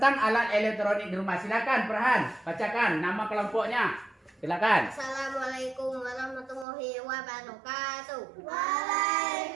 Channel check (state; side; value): drops out; left; at 6.7 s